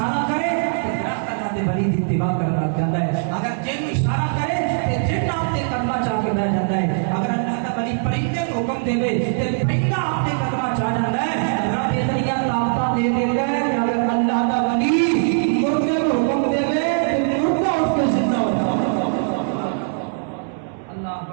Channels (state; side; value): silent; left; 59 dB below the other